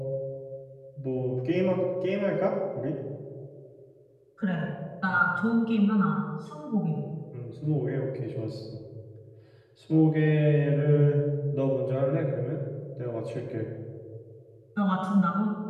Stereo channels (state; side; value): identical; both; correlation 1.00